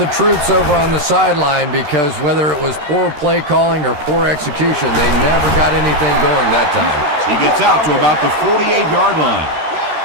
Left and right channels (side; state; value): left; late; 13 ms